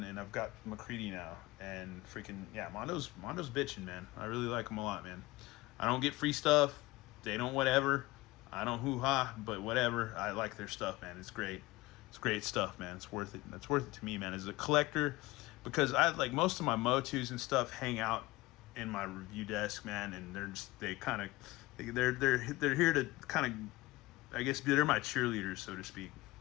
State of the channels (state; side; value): quieter; right; 20.0 dB